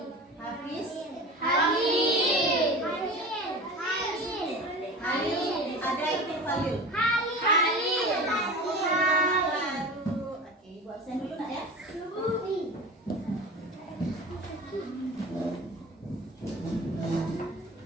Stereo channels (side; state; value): both; normal; correlation 0.34